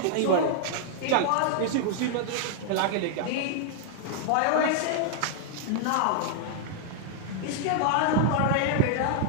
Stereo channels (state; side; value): different; both; correlation -0.01